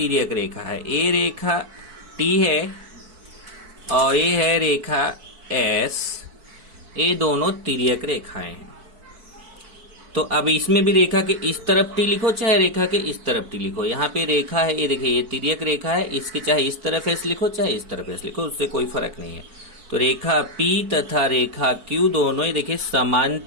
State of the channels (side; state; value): left; late; 4.6 ms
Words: रेखा है। ये रेखा T है और ये है रेखा S, ये दोनों तिर्यक रेखाएं हैं। तो अब इसमें भी रेखा के इस तरफ T लिखो चाहे रेखा के इस तरफ T लिखो। यहाँ पे रेखा है, ये देखिए ये तिर्यक रेखा है, इसके चाहे इस तरफ S लिखो चाहे इस तरफ S लिखो, उससे कोई फर्क नहीं है। तो रेखा P तथा रेखा Q दोनों ही देखिए